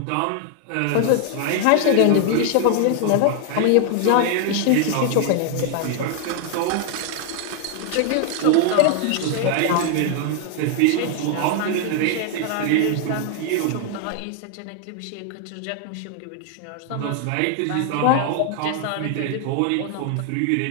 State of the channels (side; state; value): both; different; correlation 0.00